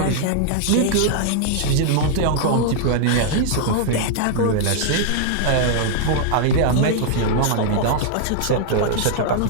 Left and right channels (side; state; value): both; different; correlation 0.00